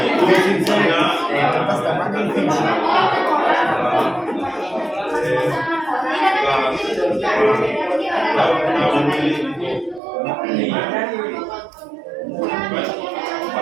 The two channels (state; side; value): drops out; left; at 10.0 s